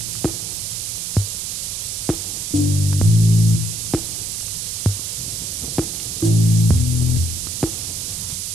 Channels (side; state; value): right; noise; hiss, 4 dB below the sound